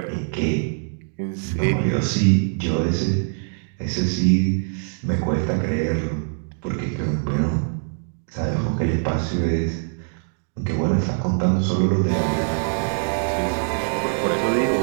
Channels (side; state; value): left; silent; 60 dB below the other